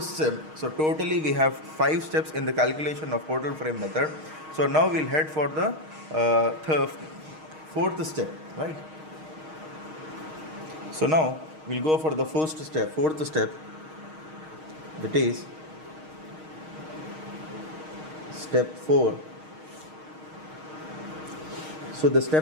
step. So totally we have 5 steps in the calculation of portal frame method. So now we'll head for the fourth step, right? So now we'll go for the fourth step, that is step 4. So the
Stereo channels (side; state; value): left; late; 6.4 ms